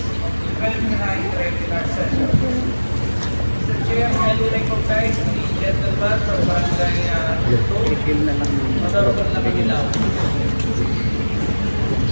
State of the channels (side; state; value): both; inverted; correlation -1.00